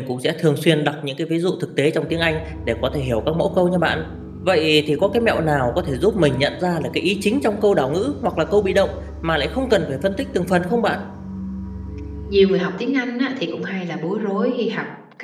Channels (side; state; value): both; identical; correlation 1.00